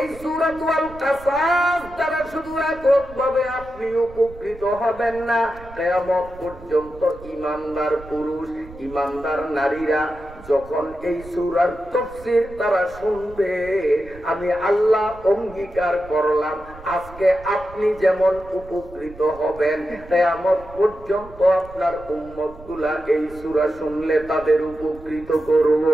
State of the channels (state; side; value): noise; right; rumble, 18 dB below the sound